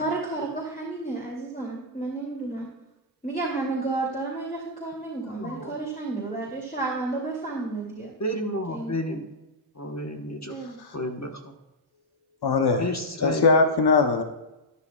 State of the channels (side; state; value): both; normal; correlation -0.07